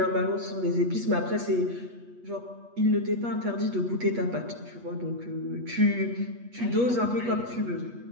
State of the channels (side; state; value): left; late; 8.3 ms